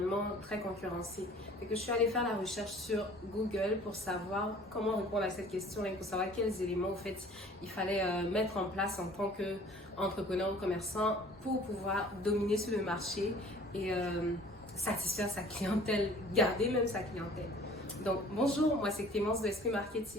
très concurrencé. Fait que je suis allée faire la recherche sur Google pour savoir comment répondre à cette question et pour savoir quels éléments au fait il fallait mettre en place en tant qu'entrepreneur ou commerçant pour pouvoir dominer sur le marché et satisfaire sa clientèle, garder même sa clientèle. Donc bonjour, moi c'est Clémence de Esprit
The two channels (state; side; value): normal; both; correlation 0.50